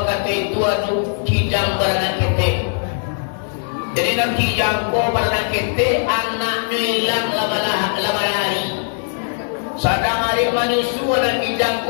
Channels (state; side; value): silent; right; 66 dB below the other